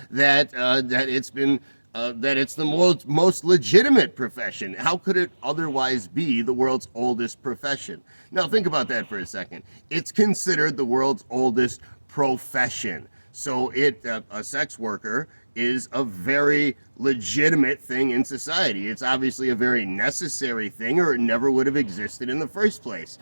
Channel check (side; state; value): both; inverted; correlation -1.00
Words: that it's been that it's the most legitimate profession. How could it otherwise be the world's oldest profession? Now think about that for a second. It's considered the world's oldest profession. So a sex worker is a very legitimate thing in society. It's obviously a very necessary thing, or it never would have existed in the first place.